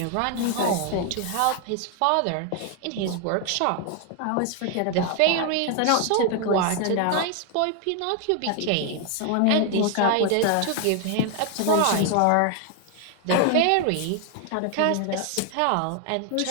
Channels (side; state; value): both; different; correlation 0.00